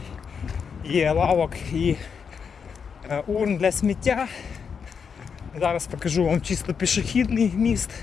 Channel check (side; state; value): right; quieter; 6.4 dB